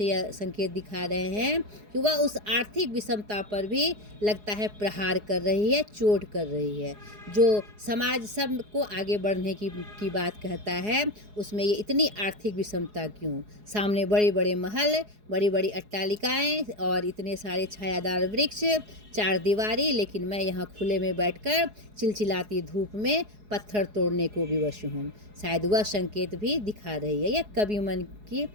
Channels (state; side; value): late; left; 4.8 ms